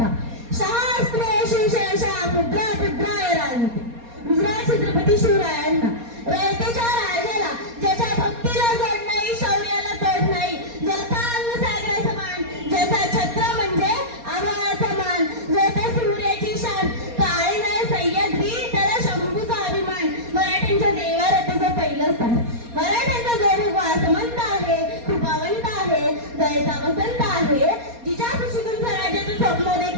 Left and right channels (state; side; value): late; left; 4.2 ms